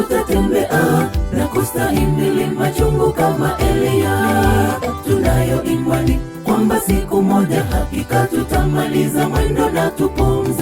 na kustahimili machungu kama Elia. Tunayo imani kwamba siku moja hakika tutamaliza mwendo na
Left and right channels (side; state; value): both; identical; correlation 1.00